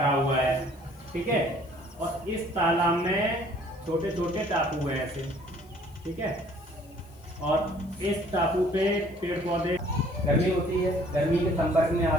हुआ है। ठीक है, और इस तालाब में छोटे छोटे टापू हैं ऐसे। ठीक है, और इस टापू पे पेड़ पौधे, गर्मी होती है, गर्मी के संपर्क में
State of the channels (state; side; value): noise; left; hiss, 29 dB below the sound